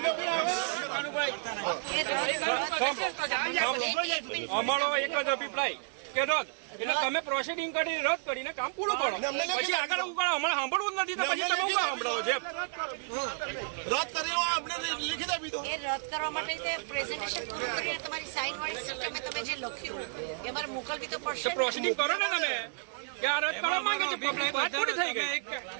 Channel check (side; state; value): left; silent; 57 dB below the other